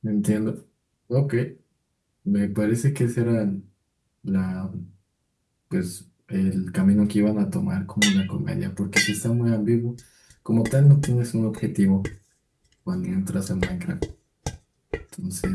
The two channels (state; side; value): identical; both; correlation 1.00